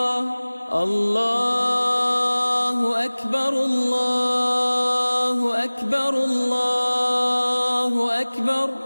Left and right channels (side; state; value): both; inverted; correlation -1.00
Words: الله أكبر الله أكبر الله أكبر.